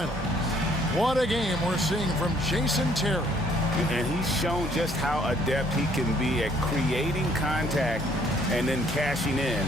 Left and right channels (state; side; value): normal; both; correlation 0.63